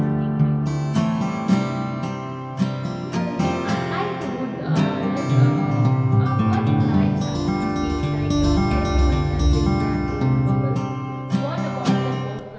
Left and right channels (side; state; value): both; identical; correlation 1.00